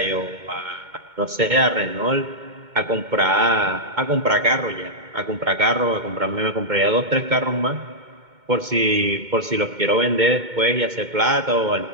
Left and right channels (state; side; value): late; left; 2.2 ms